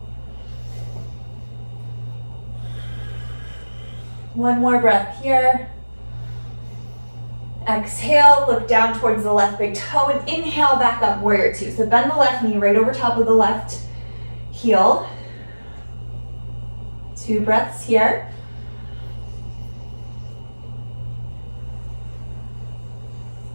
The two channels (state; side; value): inverted; both; correlation -1.00